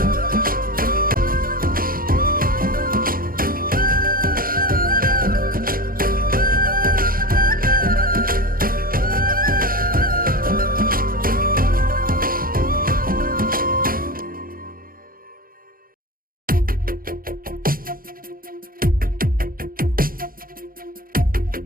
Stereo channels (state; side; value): late; left; 0.42 ms